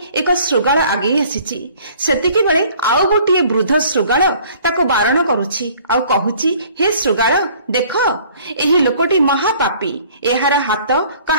ଏକ ଶୃଗାଳ ଆଗେଇ ଆସିଛି। ସେତିକିବେଳେ ଆଉ ଗୋଟିଏ ବୃଦ୍ଧ ଶୃଗାଳ ତାକୁ ବାରଣ କରୁଛି ଆଉ କହୁଛି, ହେ ଶୃଗାଳ, ଦେଖ ଏହି ଲୋକଟି ମହାପାପୀ। ଏହାର ହାତ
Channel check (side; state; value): both; inverted; correlation -0.54